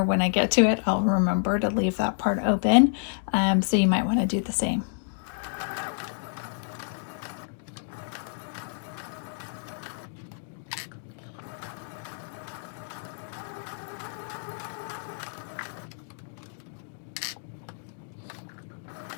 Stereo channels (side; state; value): right; silent; digital silence